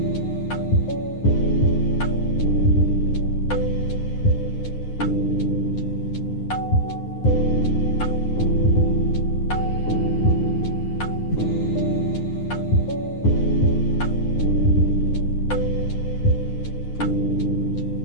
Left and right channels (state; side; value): late; right; 9.6 ms